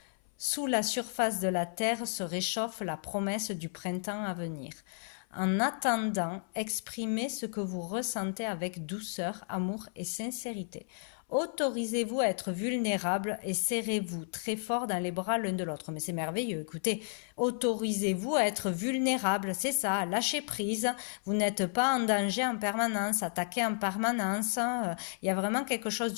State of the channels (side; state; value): right; silent; 56 dB below the other